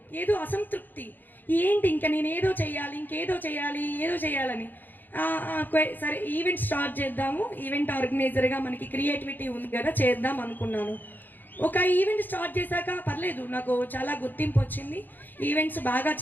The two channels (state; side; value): late; right; 0.088 ms